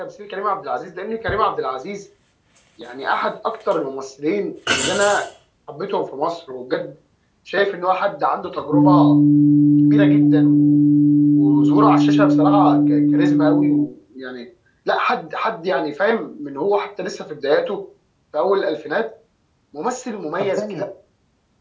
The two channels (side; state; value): both; identical; correlation 1.00